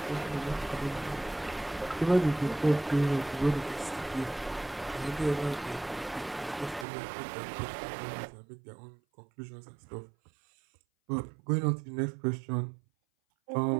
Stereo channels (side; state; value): left; drops out; at 6.9 s